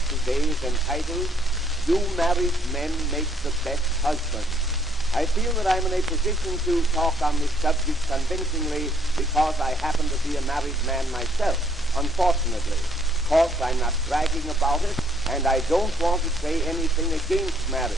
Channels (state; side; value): normal; both; correlation 0.67